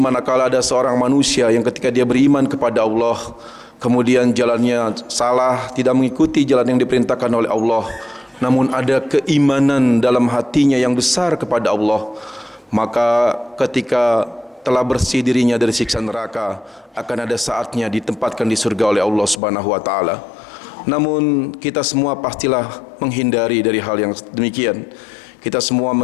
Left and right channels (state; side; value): drops out; right; at 19.4 s